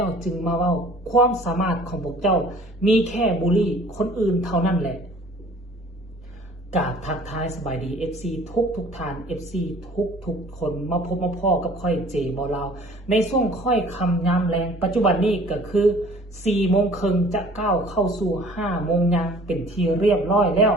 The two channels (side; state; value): both; normal; correlation 0.51